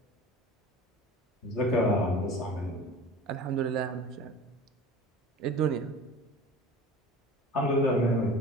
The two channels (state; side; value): normal; both; correlation 0.39